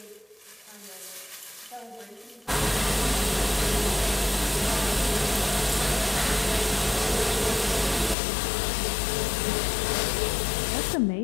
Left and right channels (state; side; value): drops out; right; at 8.2 s